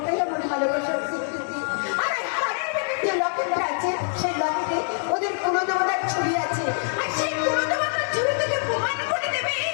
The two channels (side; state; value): right; silent; digital silence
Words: আমার ভালোবাসার স্বীকৃতি। আর এই হাড়ের ভেতরে যে লকেটটা আছে সেই লকেটে ওদের কুলদেবতার ছবি আছে। আর সেই কুলদেবতার ছবি তোকে প্রমাণ করে দেবে